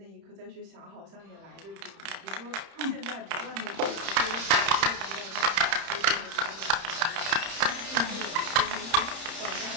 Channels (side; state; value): left; late; 30 ms